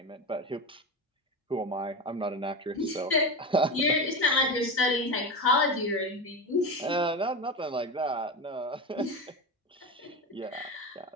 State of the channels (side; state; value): both; normal; correlation 0.21